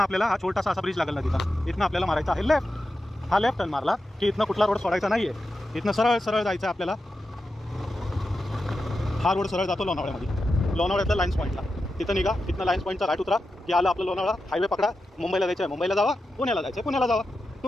आपल्याला हा छोटासा असा ब्रिज लागेल ना तिथं, इथनं आपल्याला मारायचा आहे लेफ्ट. हा लेफ्ट टर्न मारला की इथनं कुठला रोड सोडायचा नाही आहे, इथनं सरळ सरळ जायचं आहे आपल्याला. हा रोड सरळ जातो लोणावळ्यामध्ये, लोणावळ्यातल्या लाईन्स पॉईंटला. तिथं निघा, तिथनं लाईन्स पॉईंटचा राईट उतरा की आलं आपलं लोणावळा. हायवे पकडा, मुंबईला जायचं आहे मुंबईला जावा, पुण्याला जायचं आहे पुण्याला जावा,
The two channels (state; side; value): normal; both; correlation 0.90